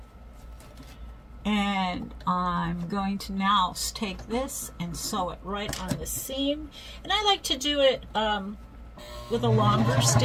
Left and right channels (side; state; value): both; identical; correlation 1.00